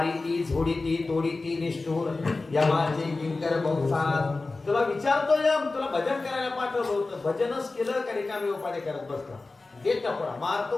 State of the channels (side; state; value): right; quieter; 3.5 dB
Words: ती झोडी ती तोडी ती निष्ठूर यमाचे किंकर बहुसार. तुला विचारतो यम, तुला भजन करायला पाठवलं होतं, भजनच केलं का रिकामी उपाय करत बसला. देत पडा